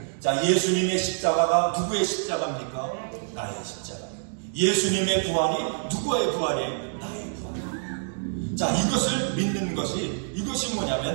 자, 예수님의 십자가가 누구의 십자가입니까? 나의 십자가예요. 예수님의 부활이 누구의 부활이에요? 나의 부활이에요. 자, 이것을 믿는 것이, 이것이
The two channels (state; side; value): silent; left; digital silence